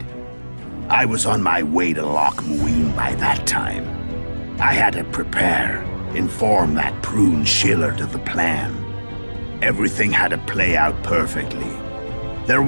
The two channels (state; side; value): inverted; both; correlation -1.00